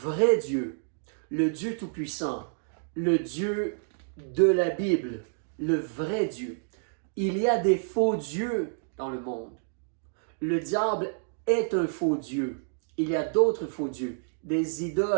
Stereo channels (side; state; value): left; silent; digital silence